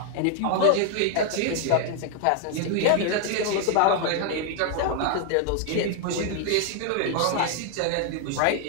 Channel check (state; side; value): different; both; correlation 0.00